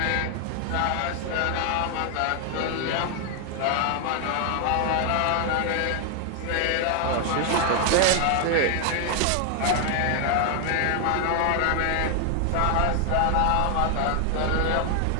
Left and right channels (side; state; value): both; different; correlation 0.00